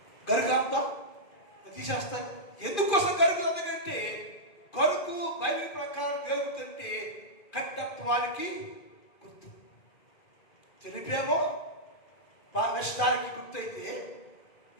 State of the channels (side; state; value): right; late; 2.4 ms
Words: గరుగంతా తీసేస్తాను. ఎందుకోసం గరుగు? ఎందుకంటే గరుగు బైబిల్ ప్రకారం గరుగుతుంటే కట్టత్వానికి గుర్తు, తెలిపేమో నష్టానికి గుర్తయితే